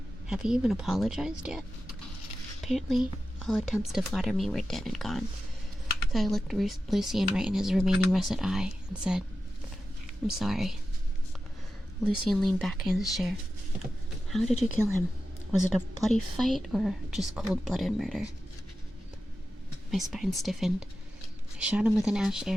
Have you even apologized yet? Apparently, all attempts to flatter me were dead and gone. So I looked Lucian right in his remaining russet eye and said, I'm sorry. Lucian leaned back in his chair. How did you kill him? Was it a bloody fight or just cold-blooded murder? My spine stiffened. I shot him with an ash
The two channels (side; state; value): both; normal; correlation 0.92